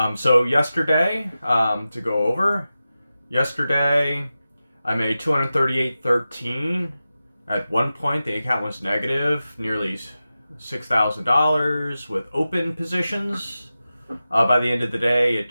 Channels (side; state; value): both; inverted; correlation -0.93